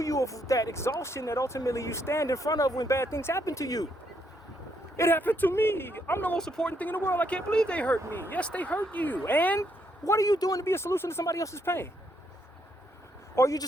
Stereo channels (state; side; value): normal; both; correlation 0.74